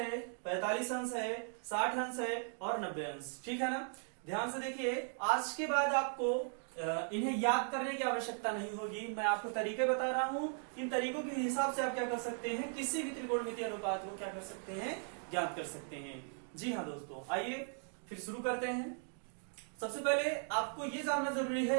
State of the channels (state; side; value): silent; left; 52 dB below the other